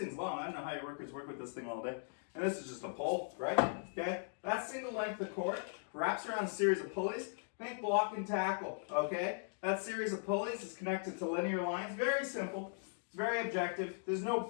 long. I don't know how your workers work with this thing all day. And this is just a pole, right? Okay, that single length of cord wraps around a series of pulleys. Think block and tackle, okay? That series of pulleys is connected to linear lines. Very simple. It's very objective. There's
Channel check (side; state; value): right; silent; digital silence